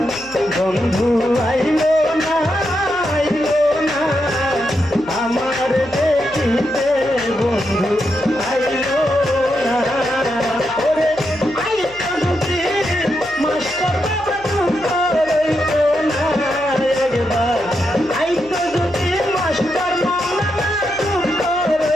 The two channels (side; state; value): left; noise; hum, 23 dB below the sound